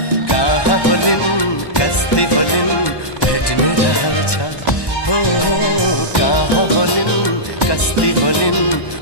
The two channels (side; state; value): right; late; 1.1 ms